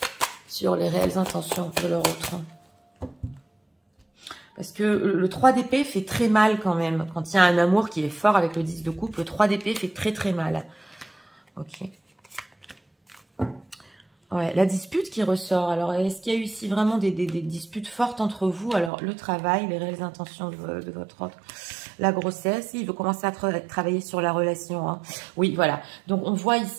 sur les réelles intentions de leur autre? Parce que le 3 d'épée fait très mal quand même. Quand il y a un amour qui est fort avec le 10 de coupe, le 3 d'épée fait très très mal. Ok. Ouais, la dispute qui ressort. Alors, est-ce qu'il y a eu ici vraiment des disputes fortes entre vous? Alors, le travail, les réelles intentions de votre autre, la grossesse, il veut commencer à travailler sur la relation. Hein. Oui, voilà. Donc, on voit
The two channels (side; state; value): left; drops out; at 18.9 s